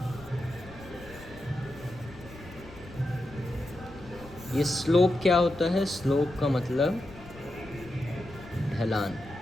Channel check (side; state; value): left; noise; rumble, 18 dB below the sound